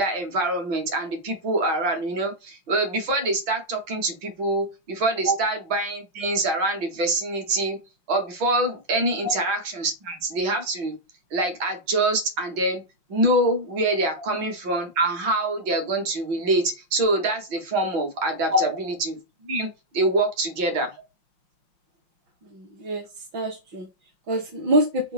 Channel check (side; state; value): left; late; 5.6 ms